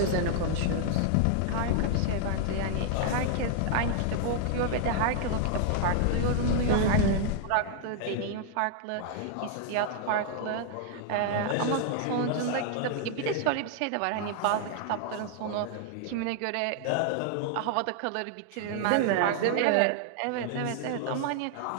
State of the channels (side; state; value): both; different; correlation 0.00